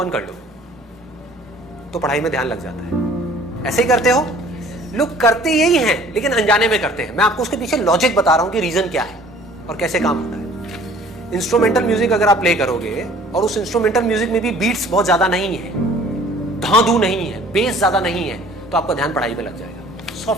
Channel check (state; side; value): normal; both; correlation 0.52